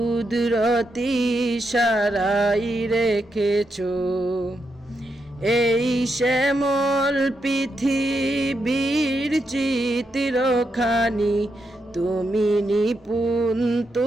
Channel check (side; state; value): both; normal; correlation 0.83